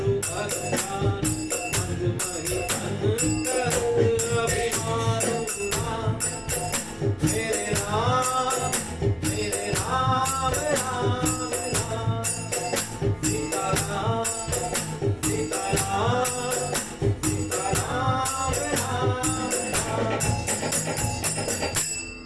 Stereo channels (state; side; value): identical; both; correlation 1.00